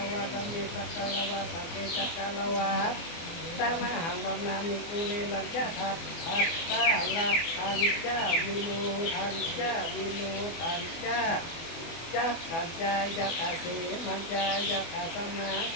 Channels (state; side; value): late; right; 24 ms